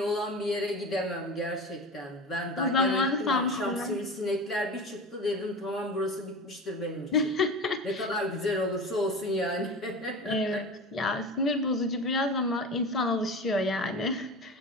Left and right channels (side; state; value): both; normal; correlation 0.30